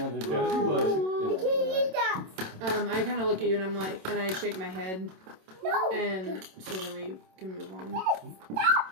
we Can I bless you? Good night. I kind of look at you and I'm like, and I shake my head, No. and so then we can move on.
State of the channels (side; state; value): left; late; 27 ms